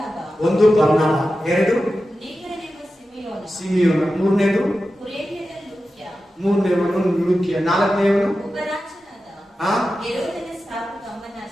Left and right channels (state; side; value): normal; both; correlation 0.92